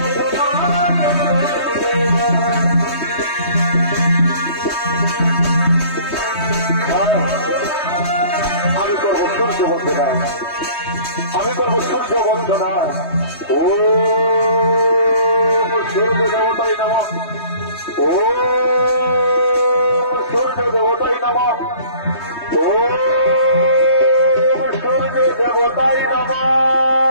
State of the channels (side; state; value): right; late; 3.2 ms